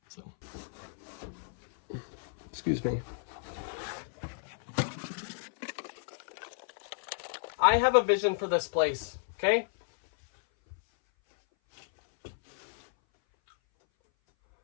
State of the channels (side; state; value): right; silent; 56 dB below the other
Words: So, excuse me. I have a vision for this place, okay?